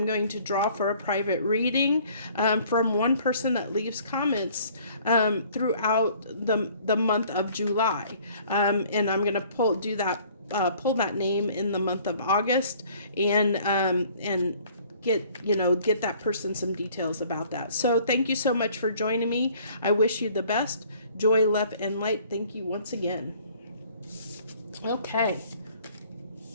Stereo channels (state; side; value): inverted; both; correlation -0.56